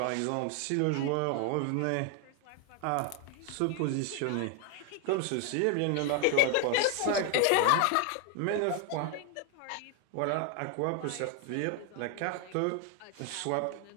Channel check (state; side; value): different; both; correlation 0.00